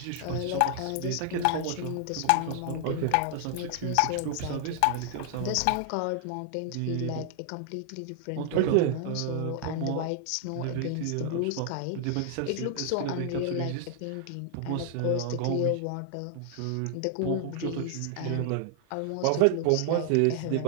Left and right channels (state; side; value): different; both; correlation 0.00